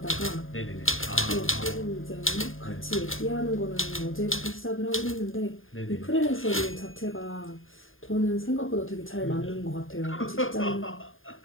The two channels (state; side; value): late; right; 0.59 ms